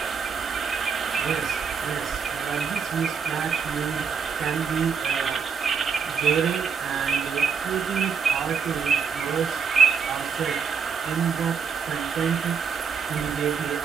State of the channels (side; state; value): left; quieter; 6.1 dB